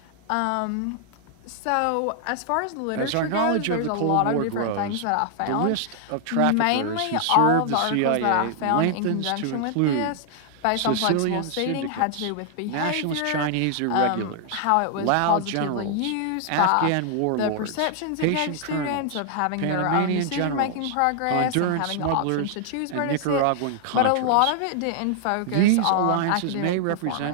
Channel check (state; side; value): different; both; correlation 0.00